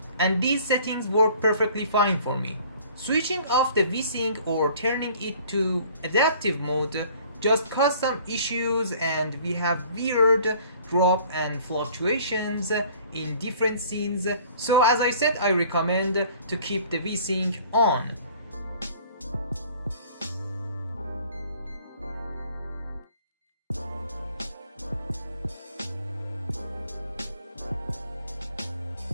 and these settings work perfectly fine for me. Switching off the VSync or turning it to adaptive mode just caused some issues, and we have weird drop and fluctuations in different scenes. So as I said, I recommend to keep the VSync on.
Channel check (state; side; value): inverted; both; correlation -0.52